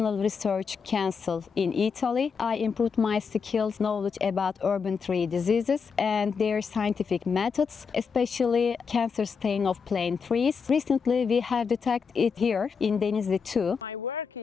Research Council in Italy. I improved my skills, knowledge about urban tree diseases and their scientific methods, especially cancer stain of plain trees. Recently, we have detected it here in Denizli too. My work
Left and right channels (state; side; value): quieter; right; 5.8 dB